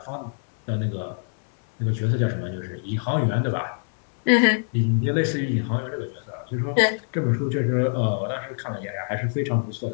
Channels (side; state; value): right; silent; 62 dB below the other